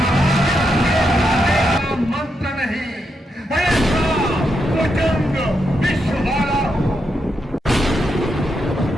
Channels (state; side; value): normal; both; correlation 0.83